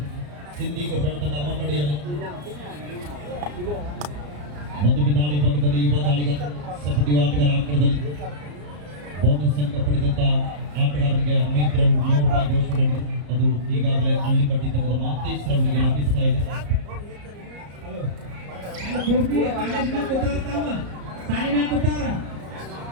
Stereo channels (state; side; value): late; left; 34 ms